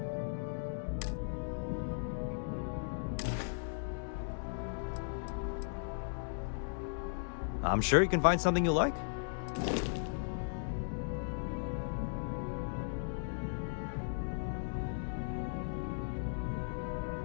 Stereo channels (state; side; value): silent; right; digital silence